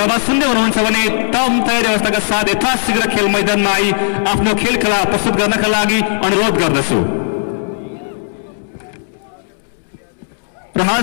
आवाज सुन्दै हुनुहुन्छ भने तम तयारी अवस्थाका साथ यथाशीघ्र खेल मैदानमा आई आफ्नो खेल खेला प्रस्तुत गर्नका लागि अनुरोध गर्दछु। र हाल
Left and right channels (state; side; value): silent; right; digital silence